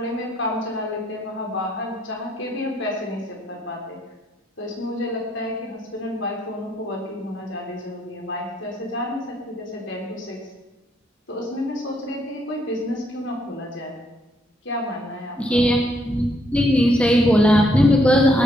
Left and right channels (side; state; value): both; normal; correlation 0.71